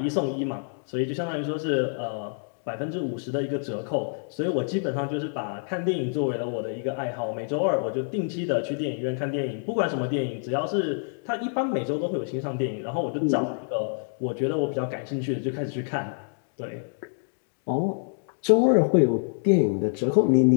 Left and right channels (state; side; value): silent; right; digital silence